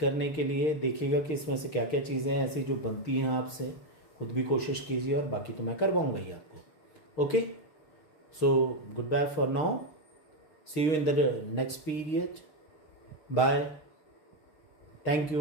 के लिए। देखिएगा कि इसमें से क्या क्या चीज़ें ऐसी जो बनती हैं आपसे, खुद भी कोशिश कीजिए और बाकी तो मैं करवाऊँगा ही आपको। Okay, so goodbye for now, see you in the next period, bye, thank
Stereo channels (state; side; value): late; right; 6.4 ms